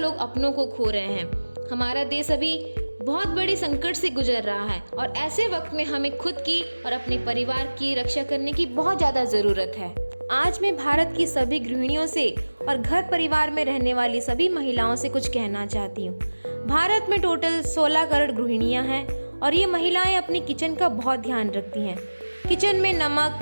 अपनों को खो रहे हैं। हमारा देश अभी बहुत बड़े संकट से गुजर रहा है और ऐसे वक्त में हमें खुद की और अपने परिवार की रक्षा करने की बहुत ज़्यादा ज़रूरत है। आज मैं भारत की सभी गृहिणियों से और घर परिवार में रहने वाली सभी महिलाओं से कुछ कहना चाहती हूँ। भारत में टोटल 16 करोड़ गृहिणियाँ हैं और ये महिलाएं अपनी किचन का बहुत ध्यान रखती हैं। किचन में नमक,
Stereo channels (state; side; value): inverted; both; correlation -1.00